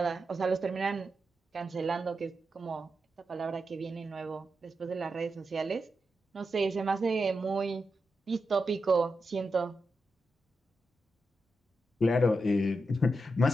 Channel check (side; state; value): both; normal; correlation 0.87